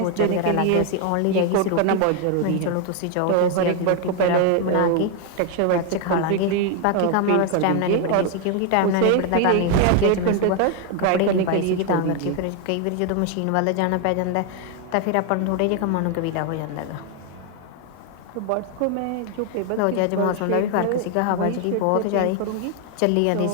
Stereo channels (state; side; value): different; both; correlation 0.01